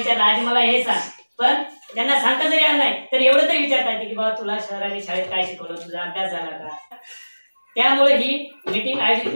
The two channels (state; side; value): inverted; both; correlation -1.00